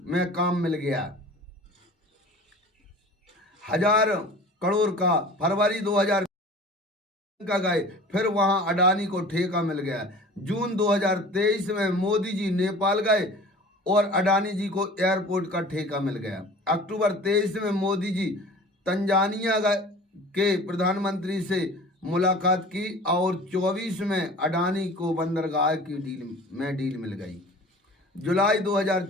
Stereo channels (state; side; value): normal; both; correlation 0.42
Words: में काम मिल गया 1000 करोड़ का। फरवरी 2000 का गए, फिर वहां अडानी को ठेका मिल गया। जून 2023 में मोदी जी नेपाल गए और अडानी जी को एयरपोर्ट का ठेका मिल गया। अक्टूबर 23 में मोदी जी तंजानिया के प्रधानमंत्री से मुलाकात की और 24 में अडानी को बंदरगाह की डील मिल गई। जुलाई